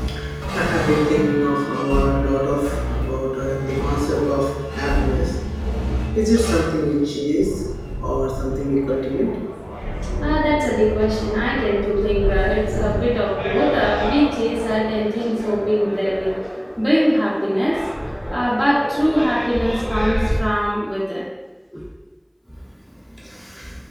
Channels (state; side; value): identical; both; correlation 1.00